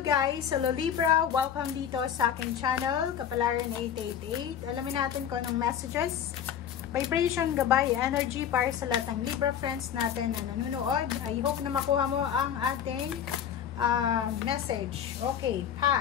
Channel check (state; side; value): quieter; right; 9.0 dB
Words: Hello Libra! Welcome dito sa aking channel, Kapalaran 888. Alamin natin kung anong messages, vibration, gabay, energy para sa lahat ng Libra friends natin na nanonood. I hope na makuha mo ang ating message. Okay,